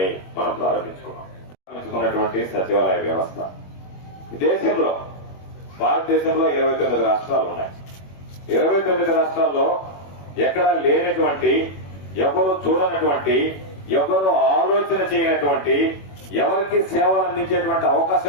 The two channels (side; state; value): right; late; 21 ms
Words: మనం ప్రారంభించుకున్నటువంటి సచివాలయ వ్యవస్థ దేశంలో, భారతదేశంలో 29 రాష్ట్రాలు ఉన్నాయి. 29 రాష్ట్రాల్లో ఎక్కడా లేనటువంటి, ఎవరు చూడనటువంటి, ఎవరు ఆలోచన చేయనటువంటి, ఎవరికి సేవలు అందించేటువంటి